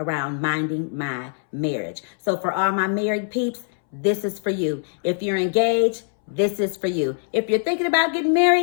minding my marriage. So for all my married peeps, this is for you. If you're engaged, this is for you. If you're thinking about getting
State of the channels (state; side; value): silent; right; 63 dB below the other